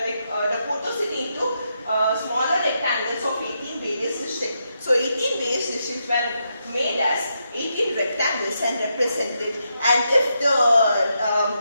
photos into smaller rectangles of 18 various districts. So 18 various districts were made as 18 rectangles and represented. And if the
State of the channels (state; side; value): inverted; both; correlation -0.82